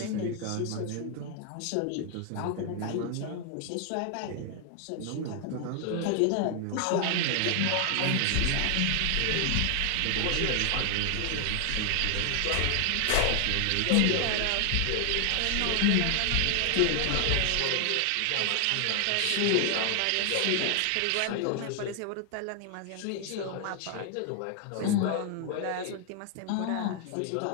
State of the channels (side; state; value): both; different; correlation 0.00